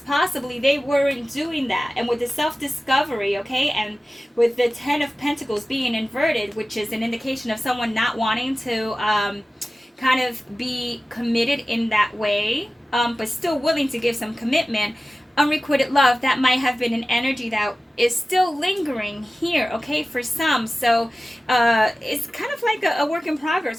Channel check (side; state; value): both; normal; correlation 0.96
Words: possibly they weren't doing that. And with the self-discovery, okay, and with the Ten of Pentacles being inverted, which is an indication of someone not wanting to kind of be committed in that way, but still willing to give some commitment. Unrequited love, that might have been an energy that is still lingering here, okay, for some. So it's kind of like a work in